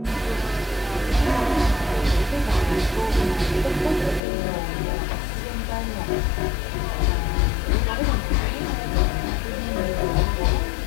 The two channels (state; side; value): drops out; right; at 4.2 s